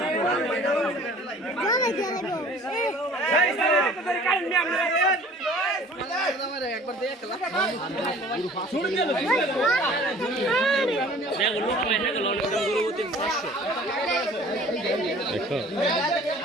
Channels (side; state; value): both; normal; correlation 0.49